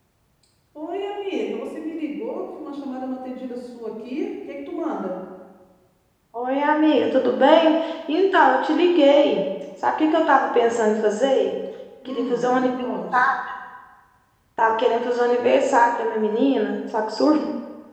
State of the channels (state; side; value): identical; both; correlation 1.00